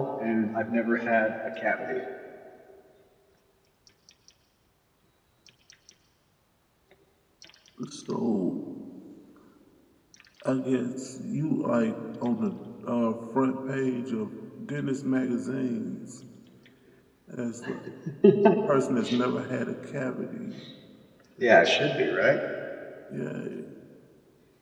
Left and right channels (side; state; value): both; identical; correlation 1.00